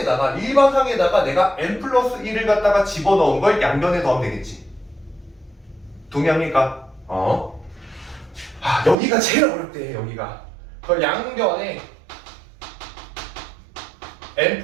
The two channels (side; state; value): left; drops out; at 9.0 s